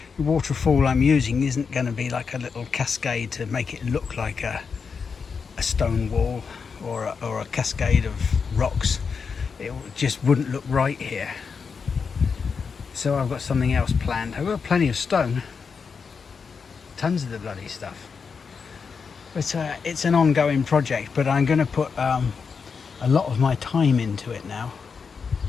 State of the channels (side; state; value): right; quieter; 5.6 dB